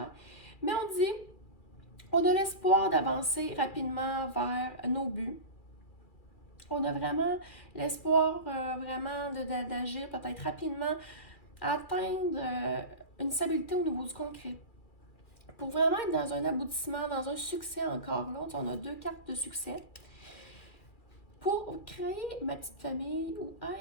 Mais on dit, on a l'espoir d'avancer rapidement vers nos buts. On a vraiment l'espoir vraiment d'agir peut-être rapidement, atteindre une stabilité au niveau du concret. Pour vraiment être dans un aboutissement, dans un succès encore là, on a deux cartes de succès. Pour créer ma petite famille ou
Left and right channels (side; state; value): right; late; 2.3 ms